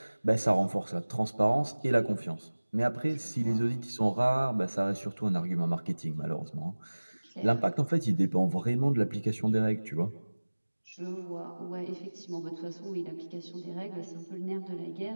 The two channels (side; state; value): both; inverted; correlation -1.00